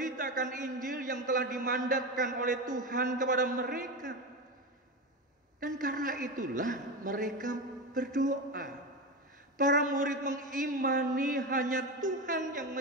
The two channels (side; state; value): both; normal; correlation 0.19